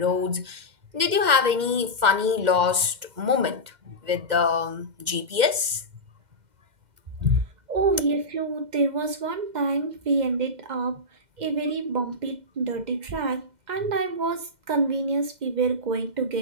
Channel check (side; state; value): left; late; 2.1 ms